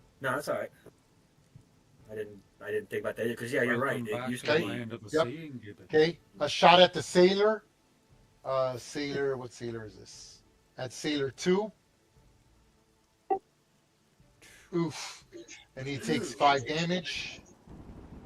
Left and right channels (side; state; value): both; identical; correlation 1.00